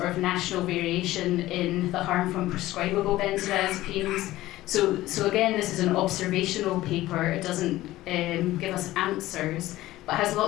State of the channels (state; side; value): quieter; right; 16.3 dB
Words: of national variation in the harm from prescribable benzodiazepines. So again, this is an observational paper. It doesn't give us answers, but has